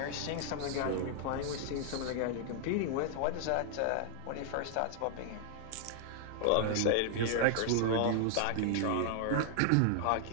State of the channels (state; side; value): different; both; correlation 0.00